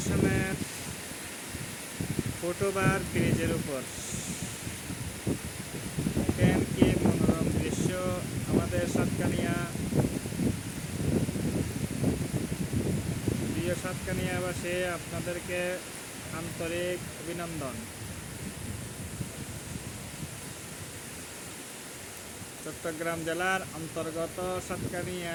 ফুটওভার ব্রিজের উপর। দেখেন কি মনোরম দৃশ্য আমাদের সাতকানিয়া। প্রিয় সাতকানিয়াবাসী, আপনাদেরকে আন্তরিক অভিনন্দন। চট্টগ্রাম জেলার অন্তর্গত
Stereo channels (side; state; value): both; identical; correlation 1.00